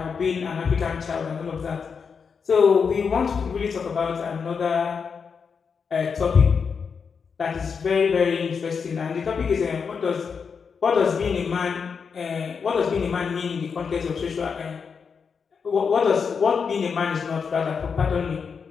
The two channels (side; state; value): right; quieter; 5.9 dB